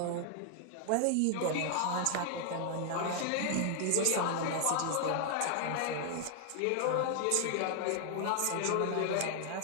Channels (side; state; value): both; different; correlation 0.00